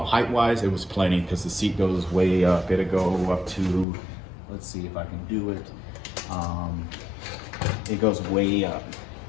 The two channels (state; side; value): drops out; right; at 3.9 s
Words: it was plenty because the seat goes way up. It'll go up to, let's see if I can do it. It goes way up.